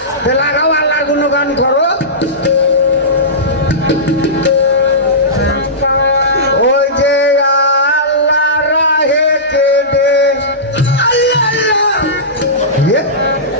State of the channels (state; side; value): normal; both; correlation -0.19